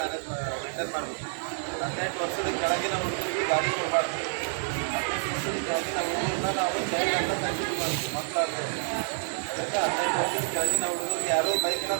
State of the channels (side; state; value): left; silent; 57 dB below the other